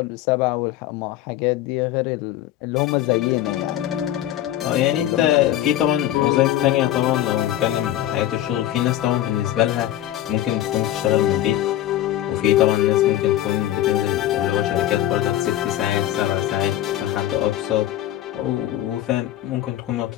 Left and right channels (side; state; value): right; quieter; 13.0 dB